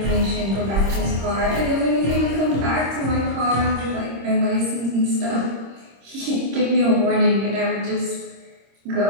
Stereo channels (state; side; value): late; left; 26 ms